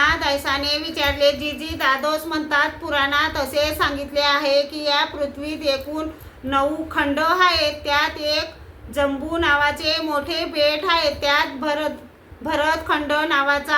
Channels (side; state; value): both; identical; correlation 1.00